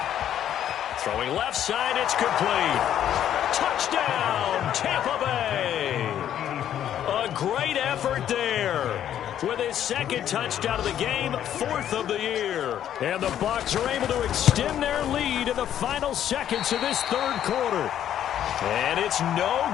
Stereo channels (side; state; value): right; quieter; 10.5 dB